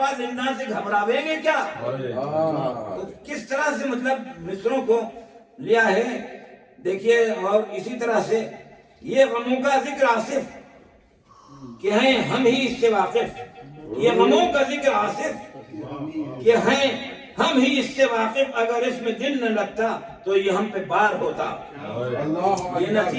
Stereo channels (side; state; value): both; identical; correlation 1.00